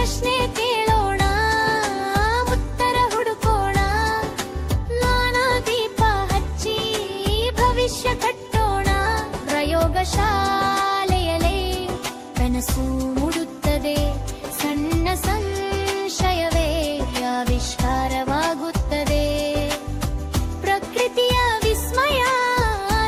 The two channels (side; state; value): both; identical; correlation 1.00